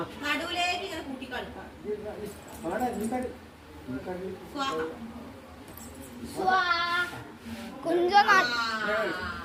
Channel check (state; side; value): identical; both; correlation 1.00